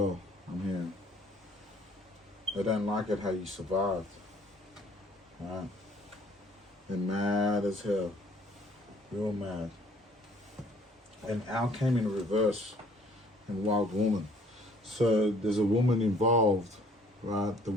I'm hearing. They don't like it how you survived, right? They're mad as hell, real mad. And Al came in reverse in Wild Woman. So there's a woman involved, right, that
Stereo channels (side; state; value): both; normal; correlation 0.58